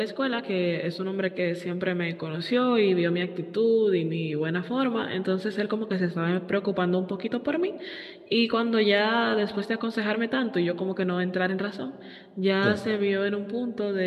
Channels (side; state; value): both; identical; correlation 1.00